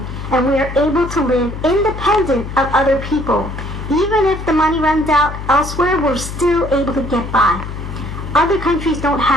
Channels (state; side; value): noise; left; hum, 8 dB below the sound